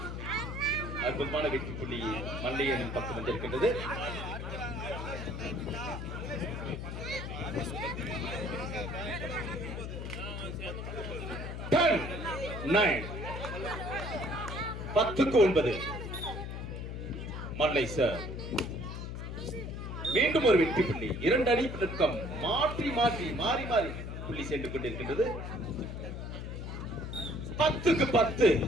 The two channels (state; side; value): noise; left; hum, 6 dB below the sound